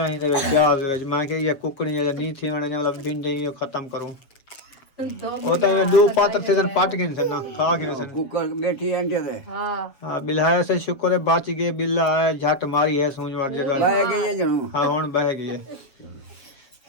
ही दे प्याज वेज, मैं कि ये कुकड़ी जे नहीं थी मैंने मतलब भिंडी यो खत्म करूं। वो तो ये दो पात्र थे पट गए थे ना, खा गए थे। कुकर बैठी अंडे दे हाँ, हाँ बिल्हाया से शुक्र है बच गए, बिल्ला आया झट मारी है सूंझ वार जगह। बह गई जनू हाँ हुण बह गई है,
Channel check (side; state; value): right; late; 7.3 ms